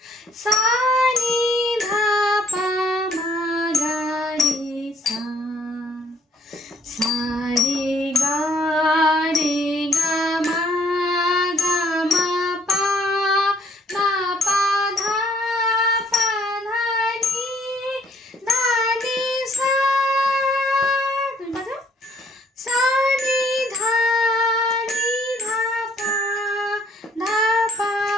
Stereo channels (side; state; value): both; normal; correlation 0.64